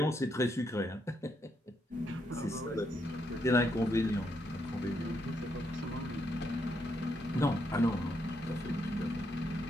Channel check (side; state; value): both; normal; correlation 0.77